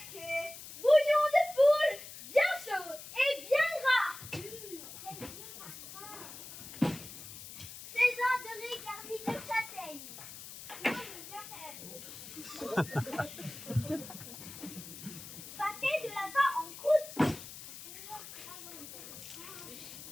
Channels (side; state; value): left; noise; hiss, 13 dB below the sound